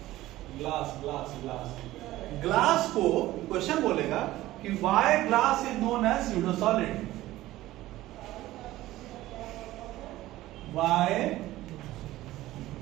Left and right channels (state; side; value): quieter; left; 16.2 dB